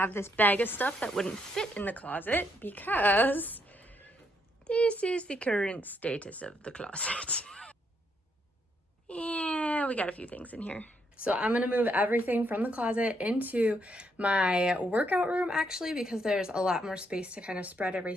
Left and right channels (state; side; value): normal; both; correlation 0.75